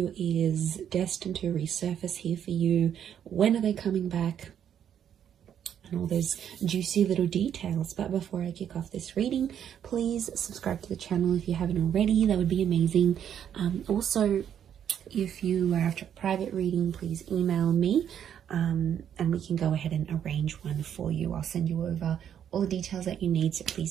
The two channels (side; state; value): left; quieter; 9.2 dB